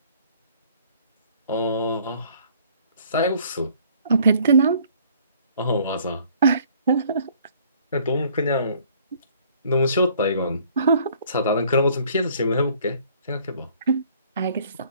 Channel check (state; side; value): inverted; both; correlation -0.58